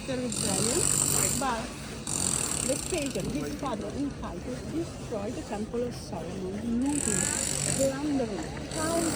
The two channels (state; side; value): identical; both; correlation 1.00